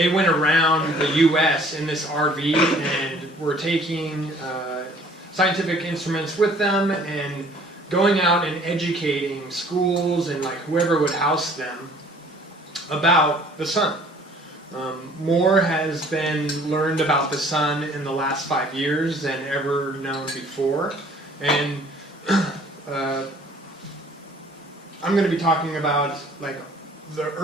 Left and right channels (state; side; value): normal; both; correlation 0.54